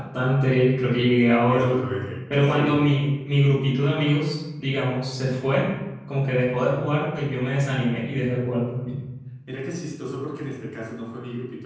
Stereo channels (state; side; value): identical; both; correlation 1.00